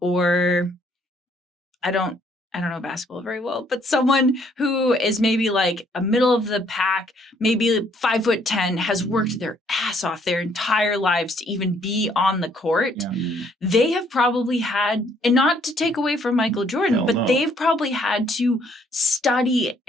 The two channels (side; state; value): both; normal; correlation 0.66